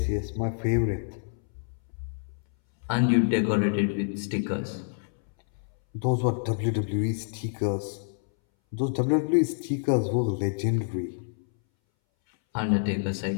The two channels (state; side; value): silent; right; 60 dB below the other